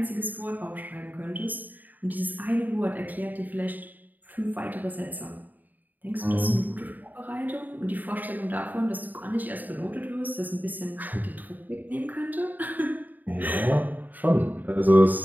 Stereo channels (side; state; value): left; late; 0.085 ms